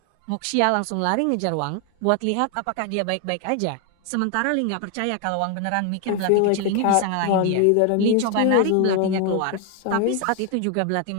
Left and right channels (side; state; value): both; different; correlation 0.01